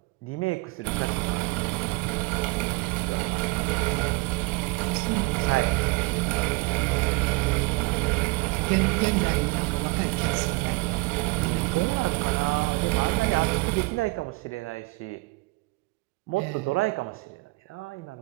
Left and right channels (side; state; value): left; quieter; 25.4 dB